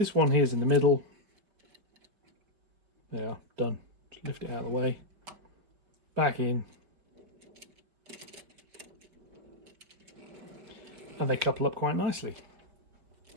one here is in the middle. There, done. Just lift it out of the way. Back in. And they couple up quite nicely.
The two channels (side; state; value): left; late; 5.2 ms